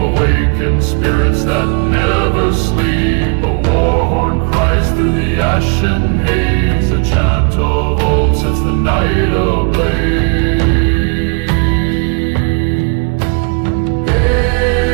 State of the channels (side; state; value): left; quieter; 35.6 dB